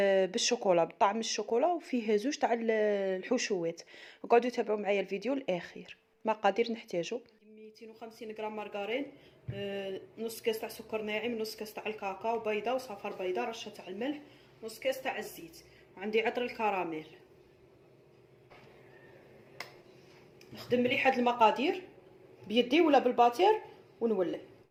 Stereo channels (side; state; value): both; identical; correlation 1.00